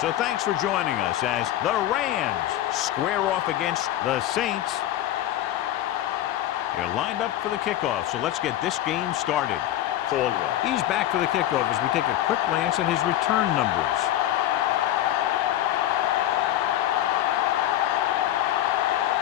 thanks for joining us as the Rams square off against the Saints. They're lined up for the kickoff, so let's get this game started. Caldwell. He's back for the kickoff as we take a quick glance at his return numbers.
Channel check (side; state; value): right; quieter; 13.0 dB